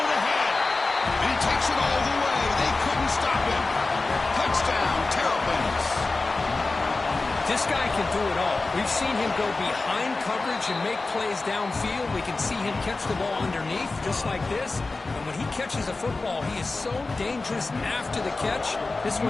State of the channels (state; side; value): quieter; right; 3.5 dB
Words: ahead. And he takes it all the way. They couldn't stop him. Touchdown, Terrapins. This guy can do it all. We've seen him go behind coverage and make plays downfield. We can see him catch the ball underneath, just like this. And when he catches a football, he is so dangerous after the catch. This